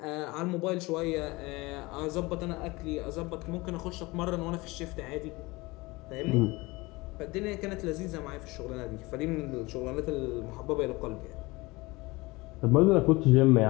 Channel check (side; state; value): right; quieter; 22.7 dB